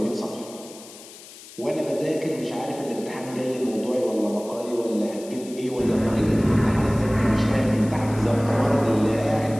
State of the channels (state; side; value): noise; left; hiss, 18 dB below the sound